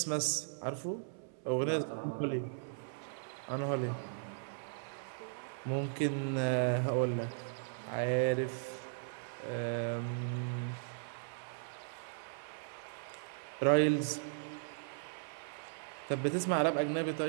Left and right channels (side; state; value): left; silent; 53 dB below the other